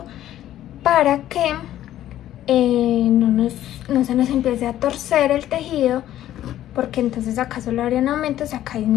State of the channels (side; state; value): right; quieter; 12.7 dB